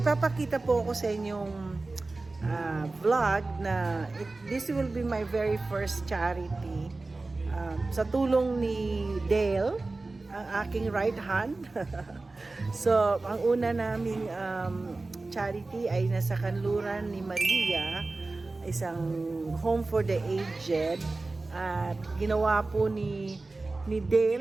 po ako sa inyong vlog na this will be my very first charity. Sa tulong ni Dale, ang aking right hand. So, ang una naming charity ay nasa kanluran ni Maria, isang home for the aged. At ginawa po ni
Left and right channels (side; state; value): left; quieter; 3.4 dB